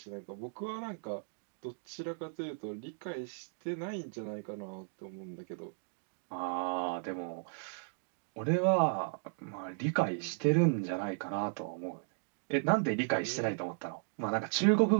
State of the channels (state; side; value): silent; left; digital silence